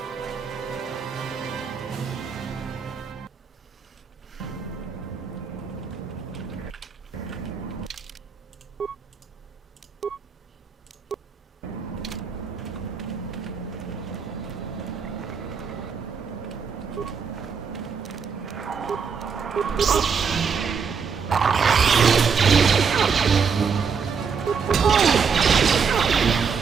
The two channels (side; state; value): left; quieter; 6.1 dB